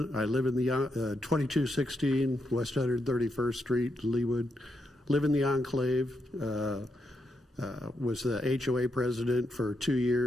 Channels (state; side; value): normal; both; correlation 0.82